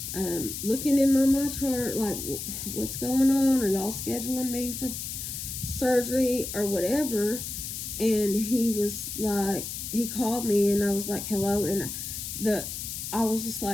looking in my MyChart, like, what's going on? Are y'all scheduling me for surgery or whatever? And he was like, he called me, and I was like, hello. And I was just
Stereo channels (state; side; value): noise; left; hiss, 6 dB below the sound